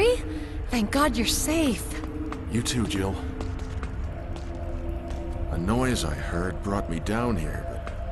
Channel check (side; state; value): both; identical; correlation 1.00